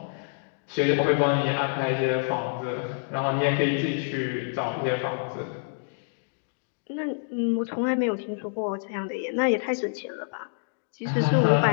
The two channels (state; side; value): silent; right; digital silence